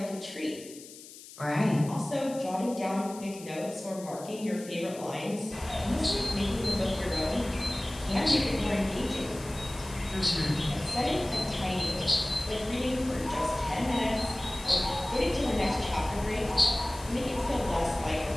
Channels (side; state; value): left; noise; hiss, 17 dB below the sound